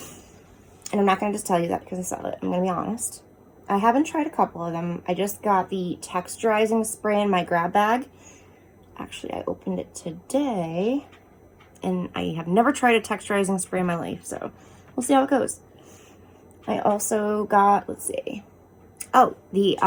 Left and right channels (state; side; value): identical; both; correlation 1.00